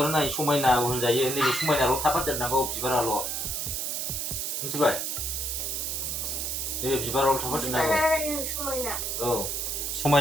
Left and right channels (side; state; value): right; noise; hiss, 2 dB below the sound